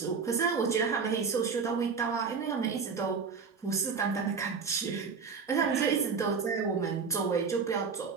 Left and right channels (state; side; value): quieter; left; 5.5 dB